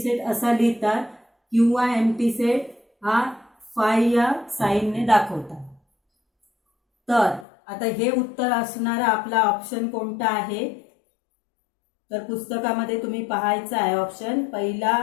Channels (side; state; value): right; drops out; at 7.5 s